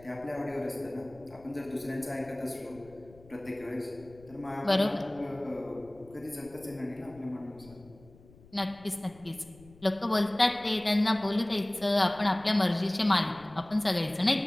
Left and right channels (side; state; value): left; noise; rumble, 23 dB below the sound